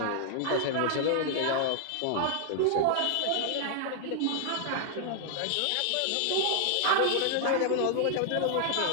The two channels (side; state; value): both; different; correlation -0.01